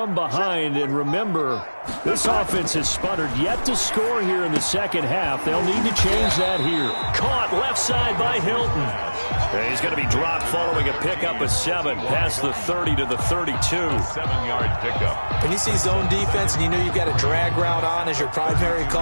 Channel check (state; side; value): inverted; both; correlation -1.00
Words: behind. And remember, this offense has sputtered yet to score here in the second half. They'll need to change that here. Caught left side by Hilton. And he's going to be dropped following a pickup of 7 past the 30 to the 32. 7-yard pickup. When you see zone defense and you know you've got a drag route on as your primary